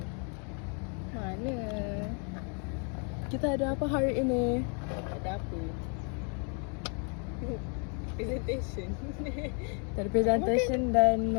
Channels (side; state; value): right; quieter; 39.5 dB